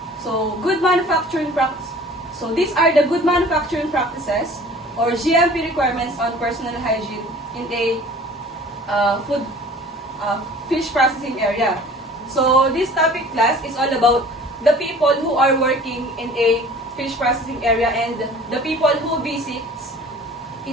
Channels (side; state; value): both; normal; correlation 0.47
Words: So, good manufacturing practice. So, these are the good manufacturing practices or GMP requirements on personal hygiene in a fish processing area. So, this topic class is all about the people who are working in a fish processing area and the people who visits